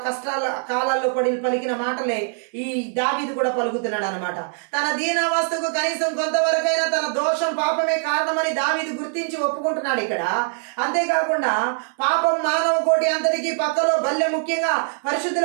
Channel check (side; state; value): left; silent; 58 dB below the other